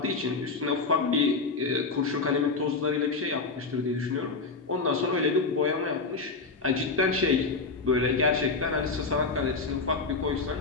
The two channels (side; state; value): right; quieter; 4.1 dB